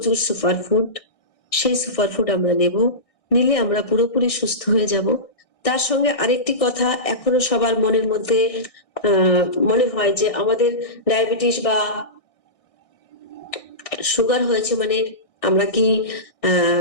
সুপারফুড, সেই সুপারফুড আমরা নেব, নিলে আমরা পুরোপুরি সুস্থ হয়ে যাব। তার সঙ্গে আরেকটি কথা এখনো সবার মনের মধ্যে মনে হয় যে আমাদের ডায়াবেটিস বা সুগার হয়েছে মানে আমরা কি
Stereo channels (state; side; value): late; right; 1.6 ms